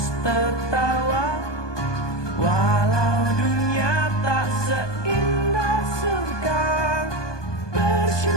tertawa, walau dunia tak seindah surga.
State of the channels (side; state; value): right; late; 1.2 ms